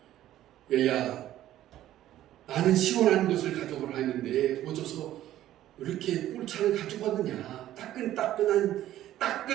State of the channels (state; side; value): quieter; left; 13.2 dB